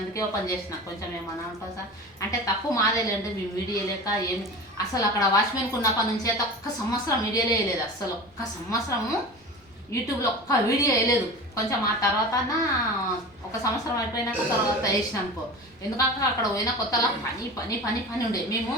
అందుకే ఓపెన్ చేసిన. కొంచెం ఏమన్నా అనుకో సార్ అంటే తక్కువ మాదేలేండి. మేము వీడియో లేక ఏమి అసలు అక్కడ వాచ్మెన్కి ఉన్నప్పటి నుంచి అయితే 1 సంవత్సరం వీడియోలే వేయలేదు. అసలు 1 సంవత్సరము యూట్యూబ్లో 1 వీడియో వేయలేదు. కొంచెం ఆ తర్వాత 1 సంవత్సరం అయిపోయినాక తర్వాత వేసిన అనుకో. ఎందుకంటే అక్కడ పోయిన కొత్తలో పని ఉండే. మేము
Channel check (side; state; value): both; normal; correlation 0.33